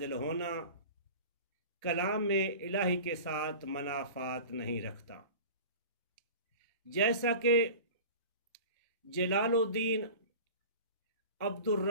ہونا کلام الہی کے ساتھ منافات نہیں رکھتا، جیسا کہ جلال الدین عبد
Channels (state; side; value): inverted; both; correlation -0.37